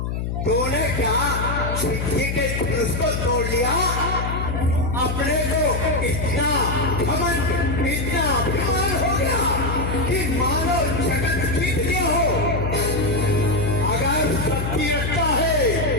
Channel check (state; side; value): noise; left; hum, 2 dB below the sound